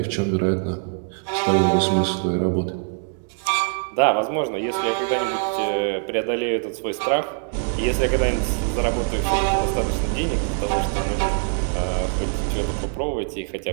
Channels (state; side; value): silent; left; 63 dB below the other